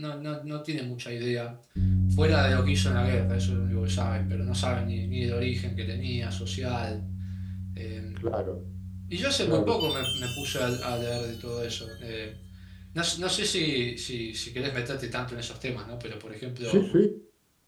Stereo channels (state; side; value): identical; both; correlation 1.00